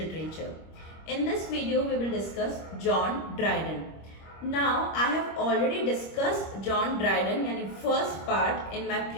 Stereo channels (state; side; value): late; right; 25 ms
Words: In this video we will discuss John Dryden. Now I have already discussed John Dryden यानी first part in my